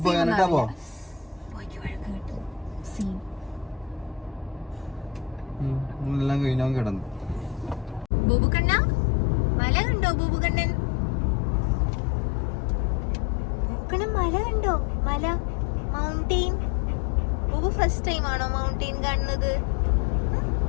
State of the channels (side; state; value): right; drops out; at 8.1 s